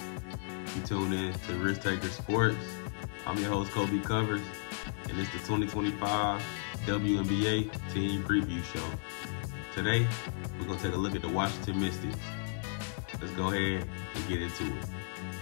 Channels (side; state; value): right; silent; 55 dB below the other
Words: You tune in to Risk Taker Sports. I'm your host, Colby Covers, and it's the 2025 Wnba Team Preview Show. Today, we're going to take a look at the Washington Mystics. Let's go ahead and get into it.